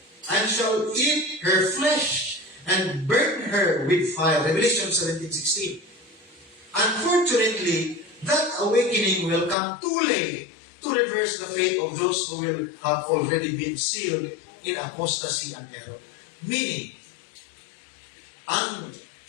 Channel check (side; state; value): right; drops out; at 9.6 s